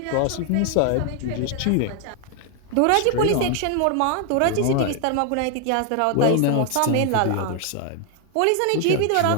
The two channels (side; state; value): both; different; correlation 0.00